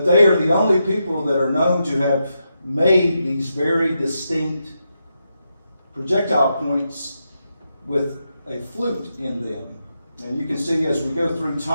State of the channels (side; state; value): both; inverted; correlation -0.85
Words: they are the only people that are known to have made these very distinct projectile points with a flute in them. And you can see as we go through